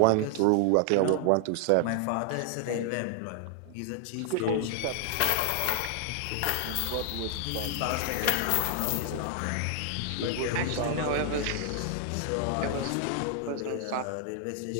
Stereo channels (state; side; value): different; both; correlation 0.00